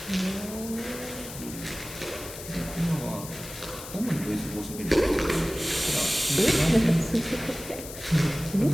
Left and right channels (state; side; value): noise; left; hiss, 12 dB below the sound